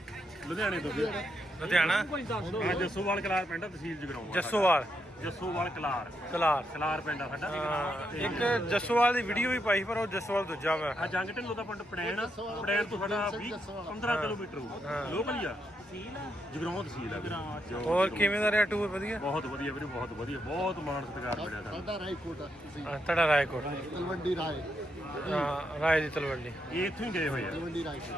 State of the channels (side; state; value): both; normal; correlation 0.80